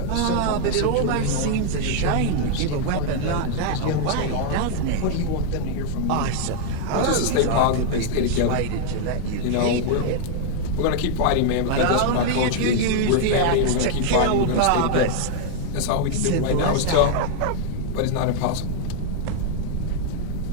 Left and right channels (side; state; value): both; different; correlation 0.00